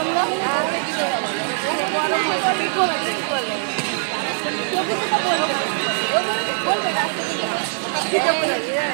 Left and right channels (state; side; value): silent; left; digital silence